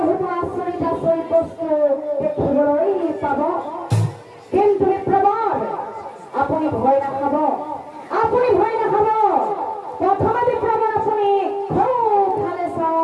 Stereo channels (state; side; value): identical; both; correlation 1.00